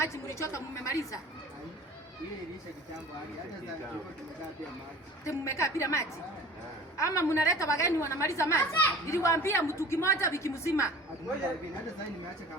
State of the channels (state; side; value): normal; both; correlation 0.43